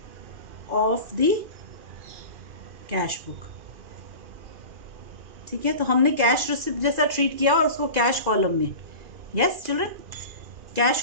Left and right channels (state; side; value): late; left; 2.4 ms